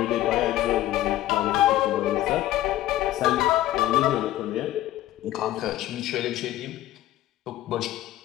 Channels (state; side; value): quieter; right; 14.4 dB